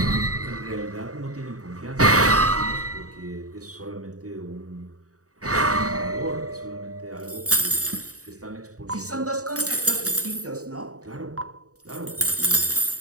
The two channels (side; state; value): left; late; 0.66 ms